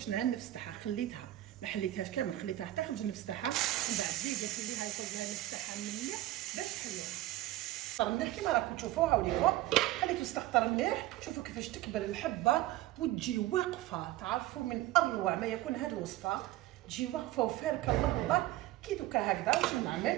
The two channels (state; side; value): quieter; left; 15.8 dB